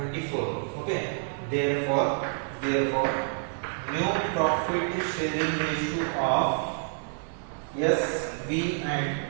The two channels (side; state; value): left; silent; digital silence